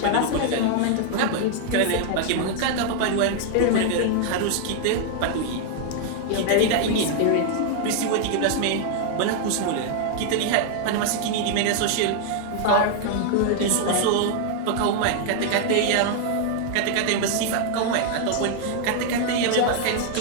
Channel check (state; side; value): different; both; correlation 0.00